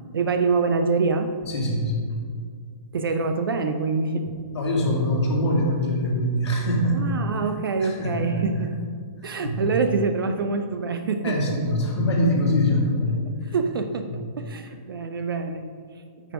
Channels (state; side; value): inverted; both; correlation -0.40